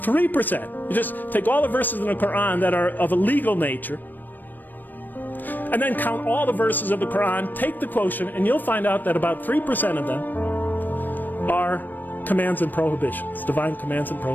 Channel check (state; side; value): late; right; 0.090 ms